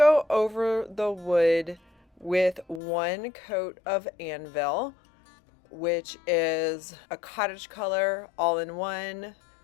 over the wood with one coat of Anvil, which is a cottage color, all-in-one,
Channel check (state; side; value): drops out; right; at 2.8 s